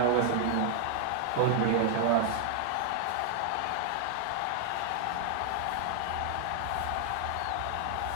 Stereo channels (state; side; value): different; both; correlation 0.00